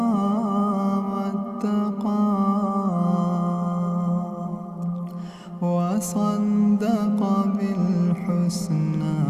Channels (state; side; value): identical; both; correlation 1.00